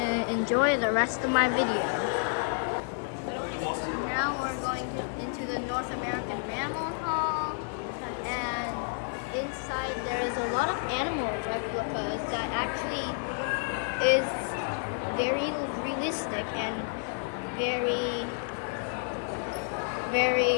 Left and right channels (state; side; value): silent; right; 58 dB below the other